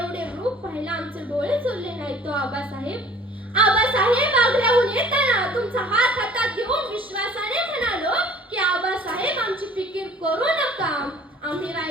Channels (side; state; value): both; normal; correlation 0.51